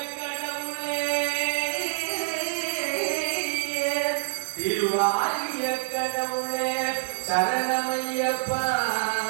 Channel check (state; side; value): silent; left; digital silence